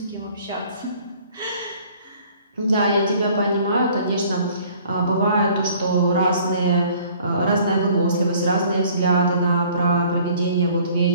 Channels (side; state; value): both; inverted; correlation -0.55